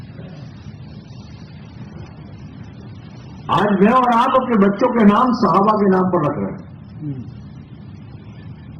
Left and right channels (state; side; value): identical; both; correlation 1.00